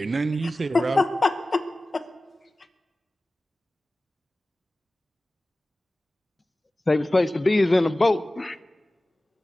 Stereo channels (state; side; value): normal; both; correlation 0.97